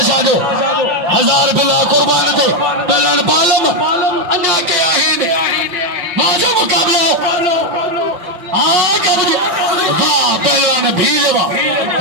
जो 1000 बिला कुर्बान ते पहलवान बालम अञा के आहिन वाह जो मुकाबलो वाह पहलवान भील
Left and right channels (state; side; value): late; left; 5.8 ms